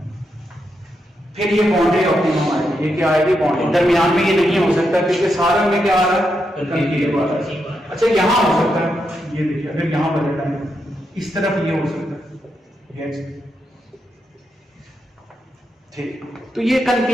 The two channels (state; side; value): normal; both; correlation 0.83